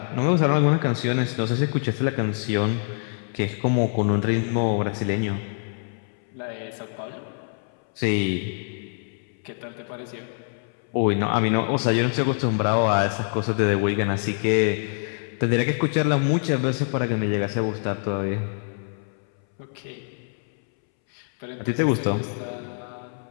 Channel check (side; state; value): right; silent; 62 dB below the other